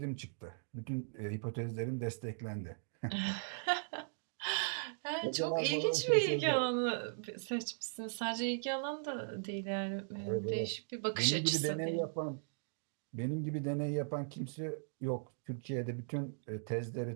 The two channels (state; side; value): silent; left; digital silence